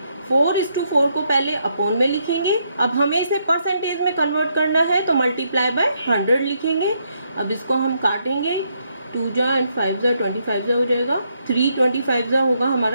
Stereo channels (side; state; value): both; inverted; correlation -0.76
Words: 4:4 को पहले अपॉन में लिखेंगे। अब हमें इसे परसेंटेज में कन्वर्ट करना है तो मल्टीप्लाई बाय 100 लिखेंगे। अब इसको हम काटेंगे, 2 जा एंड 5 जा 25 जा हो जाएगा, 3 25 जा होगा